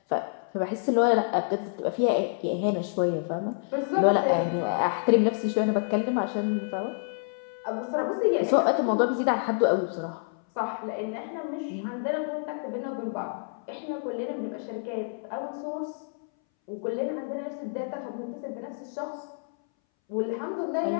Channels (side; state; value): right; silent; 59 dB below the other